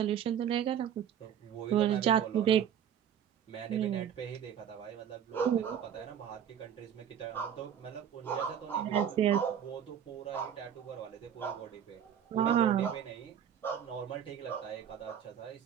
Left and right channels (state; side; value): quieter; left; 9.1 dB